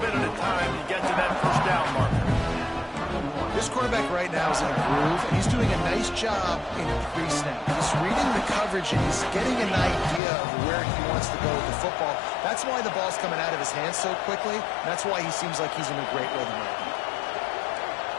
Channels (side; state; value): right; drops out; at 10.2 s